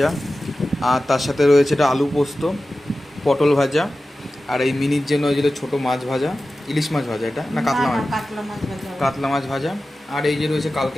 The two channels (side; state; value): both; normal; correlation 0.95